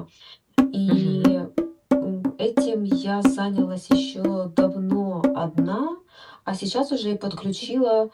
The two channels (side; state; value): both; identical; correlation 1.00